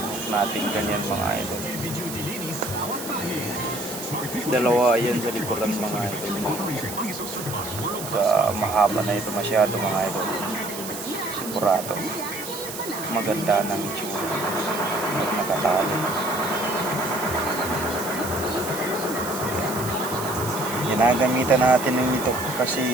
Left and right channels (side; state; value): right; noise; hiss, 9 dB below the sound